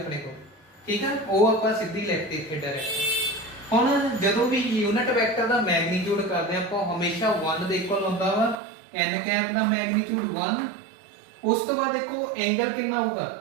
ਕੋਲ। ਠੀਕ ਹੈ ਉਹ ਆਪਾਂ ਸਿੱਧੀ ਲਿਖਤੇ ਇੱਥੇ ਡਾਇਰੈਕਟ। ਹੁਣ ਜਦੋਂ ਵੀ ਯੂਨਿਟ ਵੈਕਟਰ ਦਾ ਮੈਗਨੀਟਿਊਡ ਕਰਦੇ ਆਪਾਂ ਹਮੇਸ਼ਾ 1 ਦੇ ਇਕੁਅਲ ਹੁੰਦਾ ਵਾ n ਕੈਪ ਦਾ ਮੈਗਨੀਟਿਊਡ 1। ਉਸ ਤੋਂ ਬਾਅਦ ਦੇਖੋ ਐਂਗਲ ਕਿੰਨਾ ਹੋਊਗਾ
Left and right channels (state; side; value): drops out; left; at 8.6 s